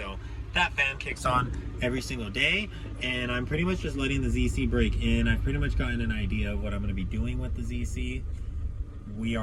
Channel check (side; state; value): both; identical; correlation 1.00